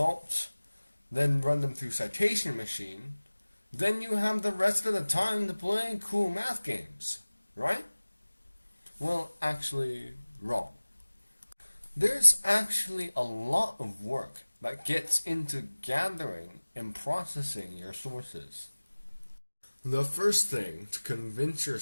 then run them through citation machine. Then you have the rest of the time to play cool math games, right? Well, actually, wrong. There's actually a lot of work that gets into gathering and processing your sources. The first thing to convince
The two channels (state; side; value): inverted; both; correlation -1.00